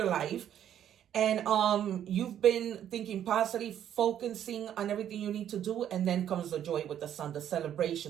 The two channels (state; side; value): quieter; left; 10.3 dB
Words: life. And you've been thinking positive, focusing on everything you need to do. And then comes the joy with the Sun, the